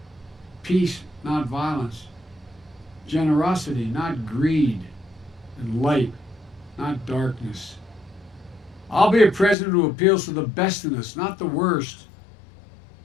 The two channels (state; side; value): drops out; right; at 9.6 s